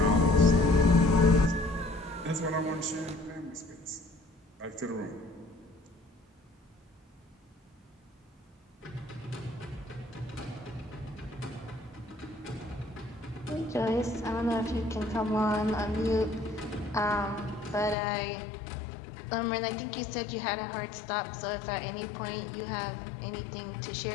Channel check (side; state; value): right; drops out; at 17.9 s